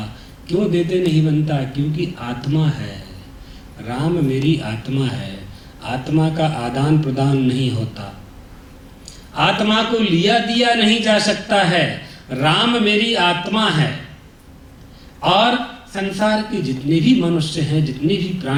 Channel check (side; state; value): both; identical; correlation 1.00